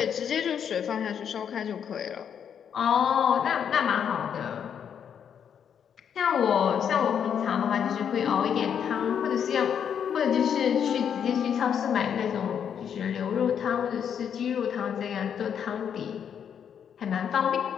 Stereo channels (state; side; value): quieter; right; 8.1 dB